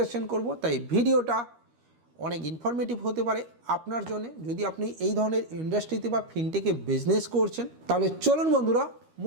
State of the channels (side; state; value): left; late; 13 ms